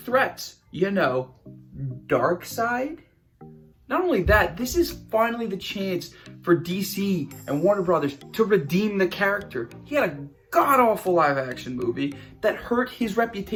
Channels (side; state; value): both; identical; correlation 1.00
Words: You know, Darkseid. Not only that, this is finally the chance for DC and Warner Brothers to redeem the character. He had a god-awful live-action movie that hurt his